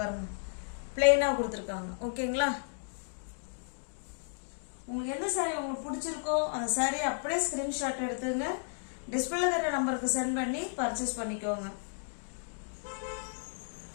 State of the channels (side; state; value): right; silent; digital silence